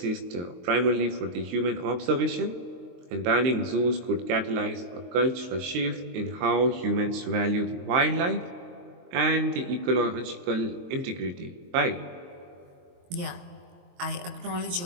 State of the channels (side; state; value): left; late; 23 ms